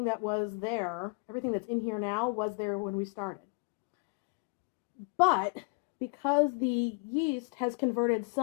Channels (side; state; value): right; quieter; 32.6 dB